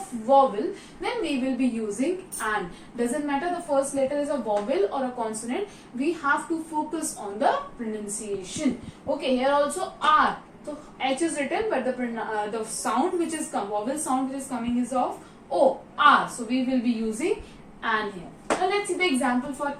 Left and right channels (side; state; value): both; identical; correlation 1.00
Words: vowel, then we will be using an. Doesn't matter the first letter is a vowel or a consonant, we have to focus on the pronunciation. Okay, here also R. So H is written, but the sound which is vowel sound which is coming is of O, R. So we will be using an here. Now let's see the example for